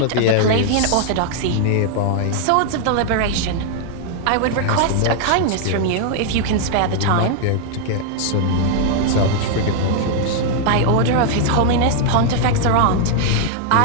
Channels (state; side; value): different; both; correlation 0.00